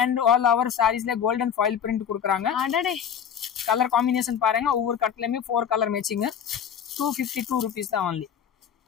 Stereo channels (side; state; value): right; quieter; 8.3 dB